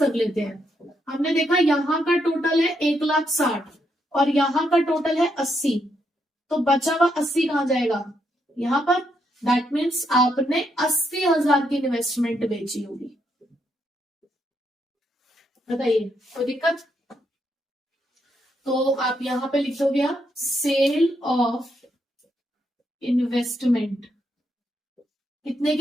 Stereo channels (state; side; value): normal; both; correlation 0.78